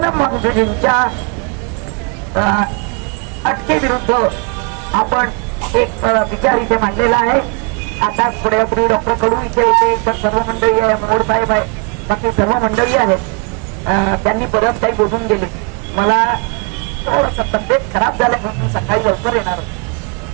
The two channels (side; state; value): left; quieter; 33.3 dB